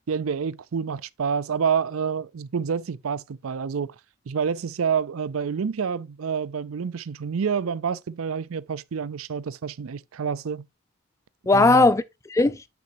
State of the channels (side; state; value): both; normal; correlation 0.17